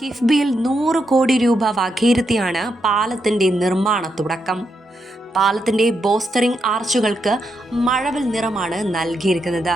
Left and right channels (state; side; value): normal; both; correlation 0.82